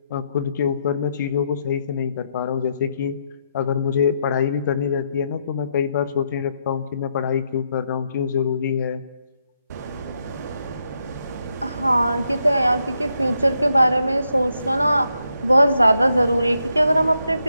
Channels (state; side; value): inverted; both; correlation -0.79